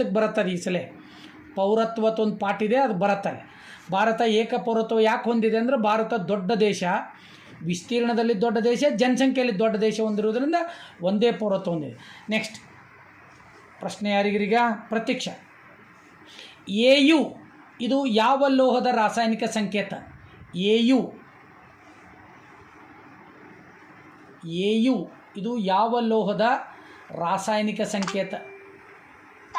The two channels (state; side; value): identical; both; correlation 1.00